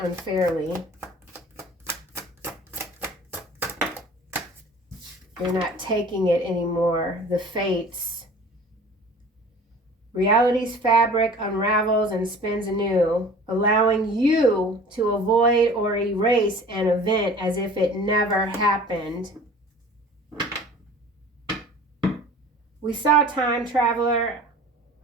You're not taking it anymore. The fates. Reality's fabric unravels and spins anew, allowing you to avoid or erase an event as if it never happened. We saw time traveler.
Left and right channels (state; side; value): normal; both; correlation 0.44